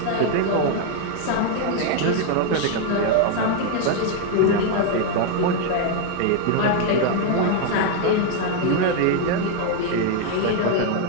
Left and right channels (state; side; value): different; both; correlation 0.01